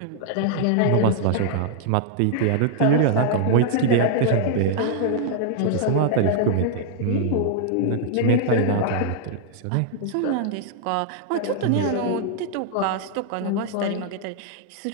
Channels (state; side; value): different; both; correlation -0.01